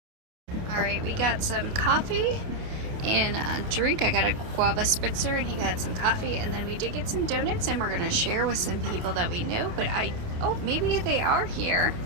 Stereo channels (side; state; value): left; late; 28 ms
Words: Alright, we got some coffee and a drink. I got a guava spritzer and he got some coffee, and then we did get some donuts, and we're gonna share with some people that we know, but oh, maybe they are here.